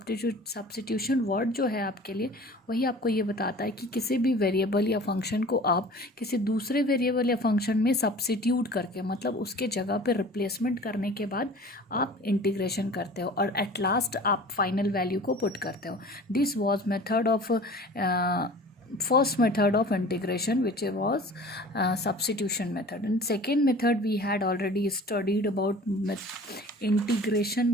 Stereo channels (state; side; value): normal; both; correlation 0.43